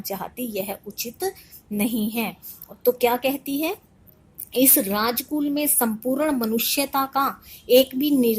चाहती, यह उचित नहीं है। तो क्या कहती है, इस राजकुल में संपूर्ण मनुष्यता का एक भी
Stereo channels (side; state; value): both; identical; correlation 1.00